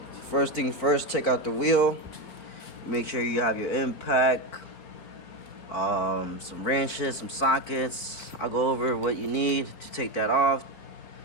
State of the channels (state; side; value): late; right; 4.5 ms